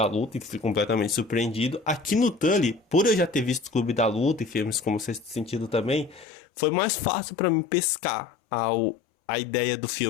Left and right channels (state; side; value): drops out; right; at 6.2 s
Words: Luta e fui completamente surpreendido. Aqui no Tully, por eu já ter visto o Clube da Luta e filmes como Sexto Sentido também, foi mais fácil pra mim pescar a ideia do